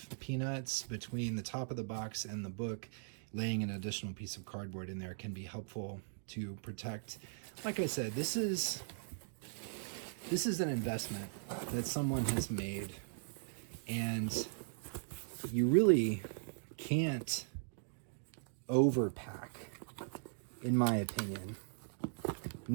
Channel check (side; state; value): left; silent; digital silence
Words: peanuts between the top of the box and the book, laying an additional piece of cardboard in there can be helpful to protect. Like I said, this is an investment that someone has made, and you really can't overpack, in my opinion.